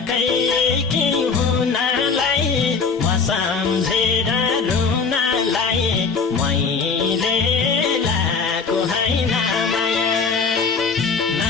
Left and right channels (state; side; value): quieter; right; 5.0 dB